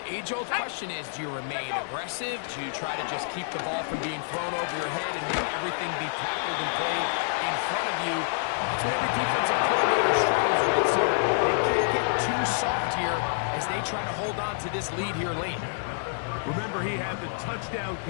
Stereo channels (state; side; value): silent; right; digital silence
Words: age-old question is, do you remain aggressive? Do you try to just keep the ball from being thrown over your head and make everything be tackled and played in front of you? That's what every defensive coordinator struggles with, so they can't get too soft here as they try to hold on to this lead here late. Remember, he had the touchdown